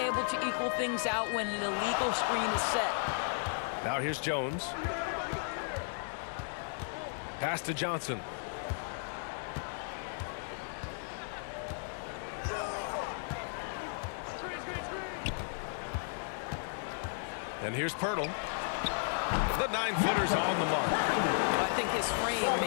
to equal things out when an illegal screen is set. Now here's Jones. Pass to Johnson. And here's Pirtle. The 9-footer's on the mark. I think his frame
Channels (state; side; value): silent; right; digital silence